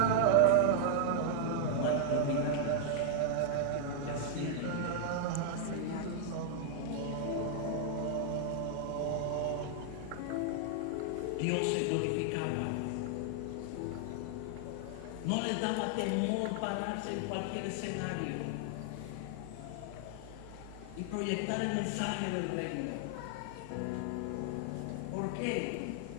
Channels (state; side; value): different; both; correlation 0.00